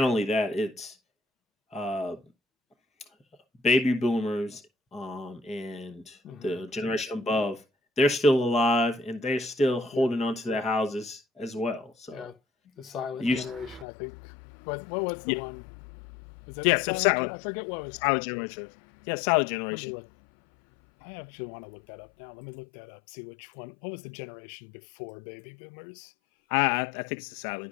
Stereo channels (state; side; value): drops out; right; at 13.9 s